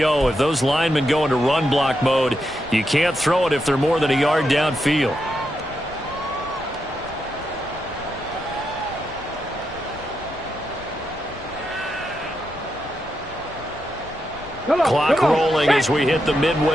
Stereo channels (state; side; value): noise; left; rumble, 18 dB below the sound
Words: If those linemen go into run block mode, you can't throw it if they're more than a yard downfield. Clock rolling as we hit the